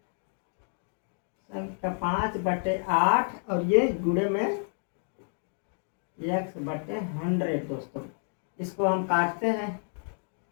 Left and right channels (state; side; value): silent; right; 58 dB below the other